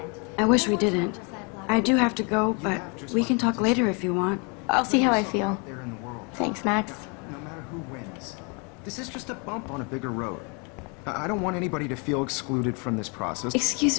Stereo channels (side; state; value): right; quieter; 34.0 dB